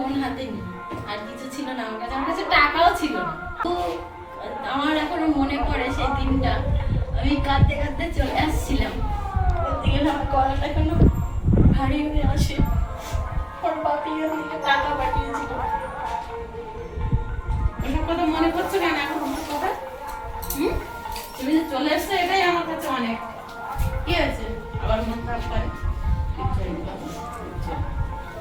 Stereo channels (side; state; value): both; identical; correlation 1.00